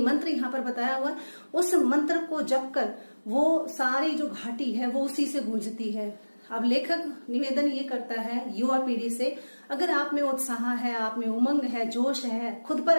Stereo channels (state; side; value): inverted; both; correlation -1.00